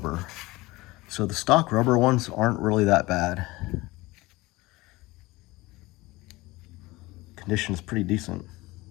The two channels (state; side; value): quieter; right; 20.9 dB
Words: So the stock rubber ones aren't really that bad. Condition is pretty decent,